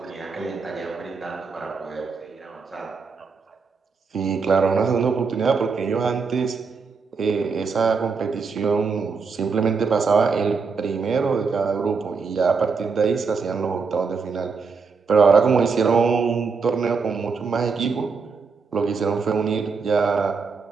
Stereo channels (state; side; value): quieter; left; 5.0 dB